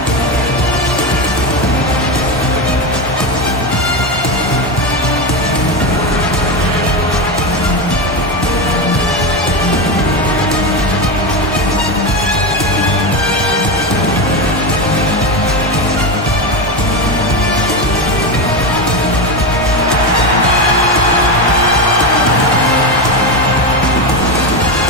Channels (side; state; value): both; normal; correlation 0.15